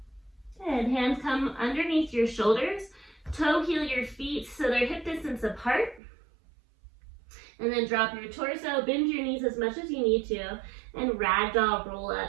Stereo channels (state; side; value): drops out; left; at 6.0 s